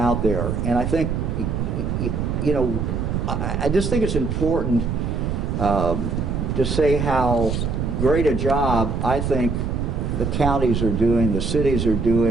there, and I think, I just think it's important to say how great a job I think the counties are doing, the cities are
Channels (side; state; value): right; noise; rumble, 1 dB below the sound